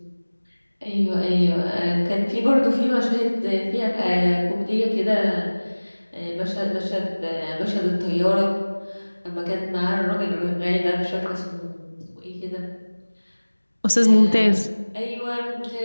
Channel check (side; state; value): both; inverted; correlation -1.00